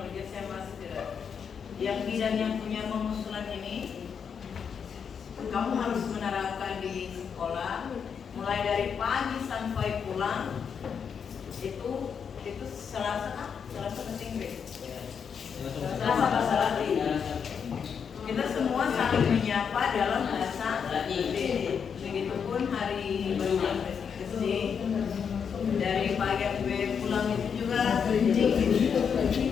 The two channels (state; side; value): quieter; right; 6.9 dB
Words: saya masih tidak. Yang bidang yang punya pengusulan ini, kamu harus menerapkan di sekolah, mulai dari pagi sampai pulang. Itu Selasa penting deh. Selasa bahasa Latin. Kita semua saling menyapa dalam bahasa Latin. Begitupun hari berbulan SD. Dari pagi sampai pulang itu juga penting.